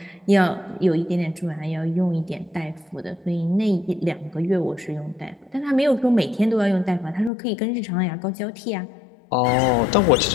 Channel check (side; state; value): right; drops out; at 7.3 s